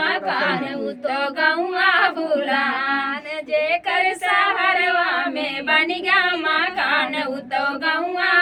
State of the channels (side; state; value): both; identical; correlation 1.00